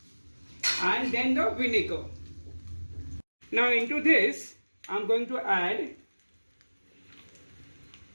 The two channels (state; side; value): inverted; both; correlation -1.00